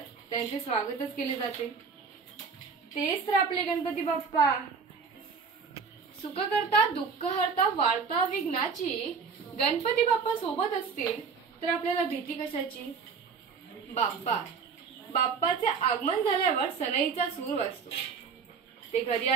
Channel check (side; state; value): left; quieter; 5.5 dB